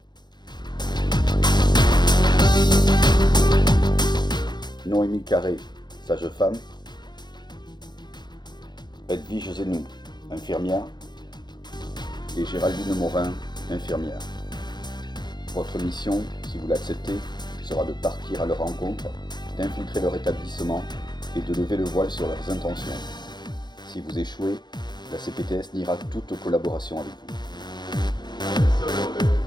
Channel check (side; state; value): right; late; 0.21 ms